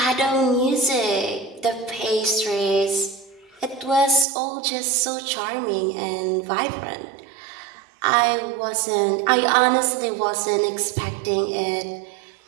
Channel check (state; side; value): drops out; left; at 4.2 s